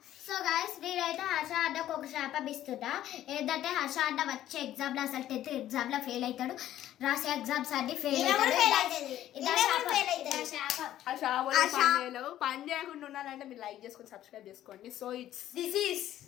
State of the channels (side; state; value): right; quieter; 12.6 dB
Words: సో గాయ్స్ నేనైతే హర్ష అడ్డకు ఒక శాపం ఇస్తున్నా. ఏంటంటే హర్ష అడ్డ వచ్చే ఎగ్జామ్లో అసలు 10th ఎగ్జామ్లో ఫెయిల్ అవుతాడు, రాసే ఎగ్జామ్స్ అన్ని ఫెయిల్ అవుతాడు. ఆ షాపులో పని చేయకుండా ఉన్నారంటే మీరు లైక్ చేసుకొని సబ్స్క్రైబ్ చేసుకోండి. So this is